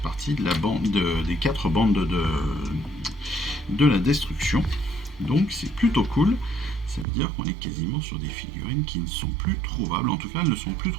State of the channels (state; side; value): drops out; left; at 7.1 s